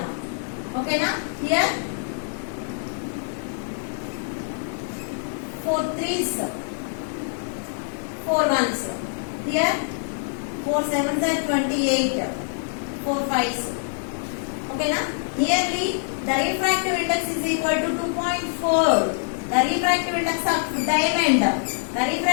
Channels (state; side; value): silent; right; digital silence